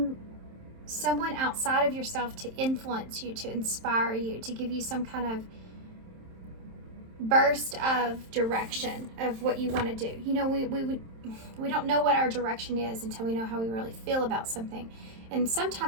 someone outside of yourself to influence you, to inspire you, to give you some kind of burst of direction of what you want to do. You know, we don't know what our direction is until we know how we really feel about something. And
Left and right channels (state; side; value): late; left; 27 ms